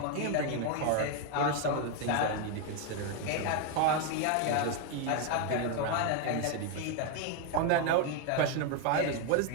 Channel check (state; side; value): different; both; correlation 0.01